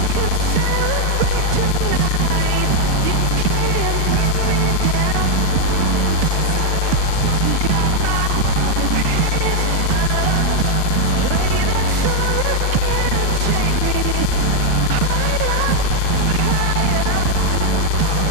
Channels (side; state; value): both; different; correlation 0.00